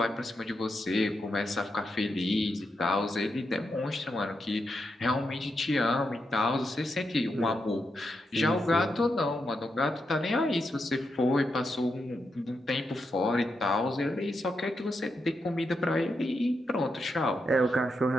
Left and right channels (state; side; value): normal; both; correlation 0.84